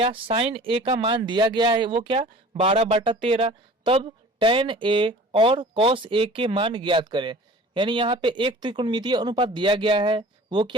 साइन ए का मान दिया गया है, वो क्या 12/13, तब टेन ए और कॉस ए के मान ज्ञात करें। यानी यहाँ पे एक त्रिकोणमितीय अनुपात दिया गया है, वो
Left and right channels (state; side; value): normal; both; correlation 0.44